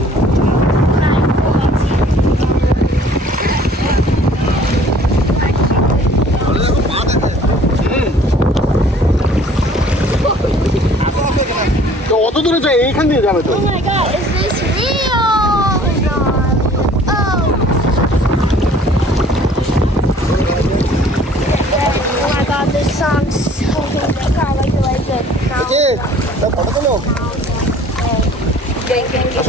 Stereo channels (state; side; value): normal; both; correlation 0.53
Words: তো অত দূরে যাই, এইখান দিয়ে যাবে তো। Oh my god, is this real? Oh my god. Oh. Oh my god, this song's so good. I can't wait to like it. Photo তোলো।